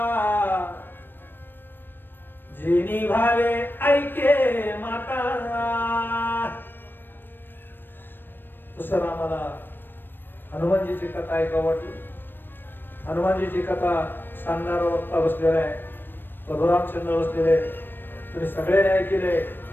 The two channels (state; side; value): late; right; 0.096 ms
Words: जिनी भावे ऐके माता. तसं रामाला हनुमानजीची कथा ऐकावं वाटली. हनुमानजीची कथा सांगणारा वक्ता बसलेला आहे, परशुरामचंद्र बसलेले. तुम्ही सगळ्यांनी ऐकले.